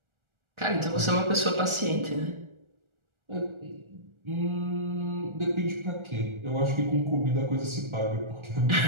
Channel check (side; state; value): left; late; 1.4 ms